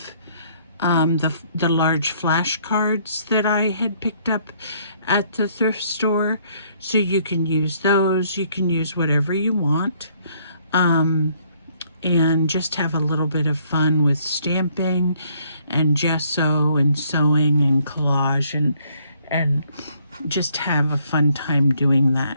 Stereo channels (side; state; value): both; inverted; correlation -0.66